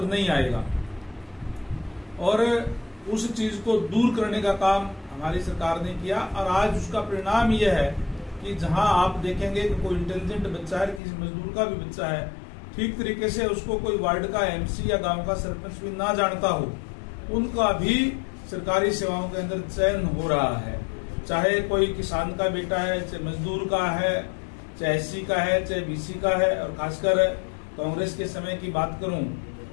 नहीं आएगा। और उस चीज को दूर करने का काम हमारी सरकार ने किया, और आज उसका परिणाम यह है कि जहां आप देखेंगे कि कोई इंटेलिजेंट बच्चा है, किसी मजदूर का भी बच्चा है, ठीक तरीके से उसको कोई वार्ड का एमसी या गांव का सरपंच भी ना जानता हो, उनका भी सरकारी सेवाओं के अंदर चयन हो रहा है। चाहे कोई किसान का बेटा है, चाहे मजदूर का है, चाहे एससी का है, चाहे बीसी का है। और खासकर कांग्रेस के समय की बात करूं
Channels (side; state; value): right; drops out; at 11.0 s